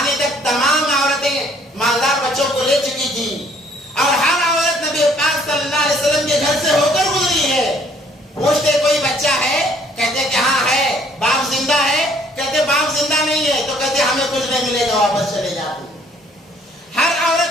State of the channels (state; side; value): normal; both; correlation 0.61